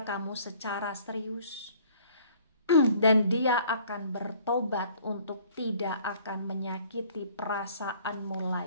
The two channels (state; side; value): inverted; both; correlation -0.55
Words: kamu secara serius. Dan dia akan bertobat untuk tidak akan menyakiti perasaanmu